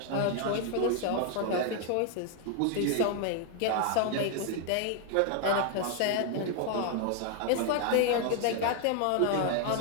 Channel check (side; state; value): both; different; correlation 0.00